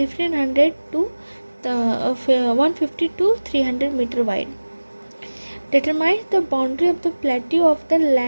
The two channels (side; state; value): both; inverted; correlation -1.00